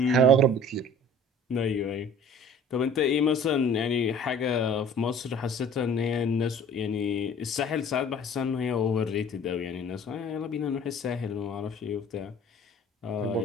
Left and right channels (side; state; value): both; normal; correlation 0.48